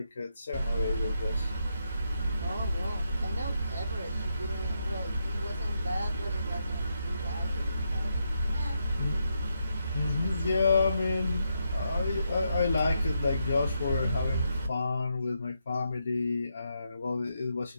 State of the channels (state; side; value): inverted; both; correlation -0.81